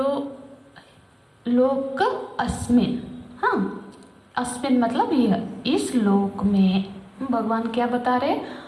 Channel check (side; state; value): both; identical; correlation 1.00